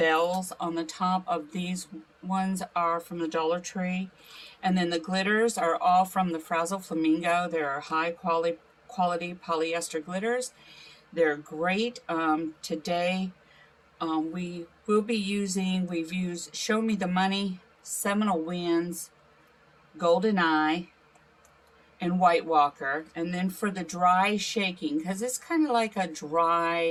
on the top of these ones are from the Dollar Tree, and then the glitters are all from the Frazzle Flamingo. They're high quality polyester glitters. They're great. Today we will be using, we've used Show Me the Money, Seminole Winds, Golden Eye, and White Walker. And then for the dry shaking, because it's kind of like a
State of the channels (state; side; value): identical; both; correlation 1.00